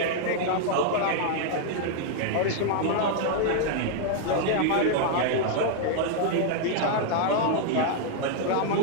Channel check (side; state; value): both; different; correlation -0.01